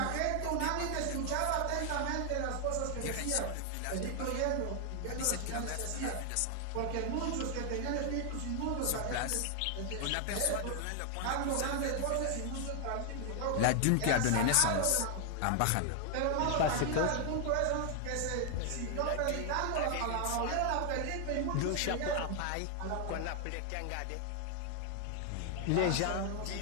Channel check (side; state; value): both; different; correlation 0.00